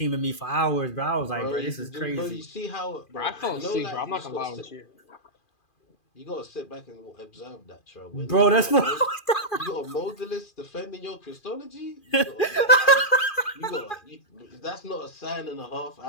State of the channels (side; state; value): right; late; 2.4 ms